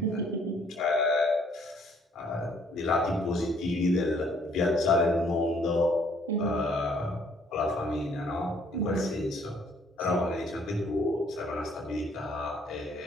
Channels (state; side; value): normal; both; correlation 0.63